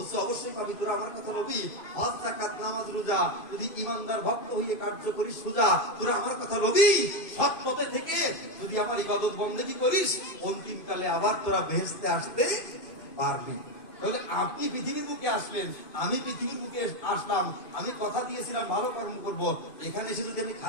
অবশ্যই পাবি, তোরা আমার কথা বলবি, হজ যাকাত নামাজ রোজা যদি ইমানদার ভক্ত হয়ে কার্য করিস সোজা, তোরা আমার কথা বলবি, সৎ পথে থেকে যদি আমার ইবাদত বন্দেগী করিস, অন্তিম কালে আবার তোরা বেহেশতে আসতে পারবি। তাহলে আপনি পৃথিবীর মুখে আসলেন, আমি পৃথিবীর মুখে আসলাম, আমি কথা দিয়েছিলাম ভালো কর্ম করব, এখানে এসে যদি আমি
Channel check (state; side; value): late; right; 2.5 ms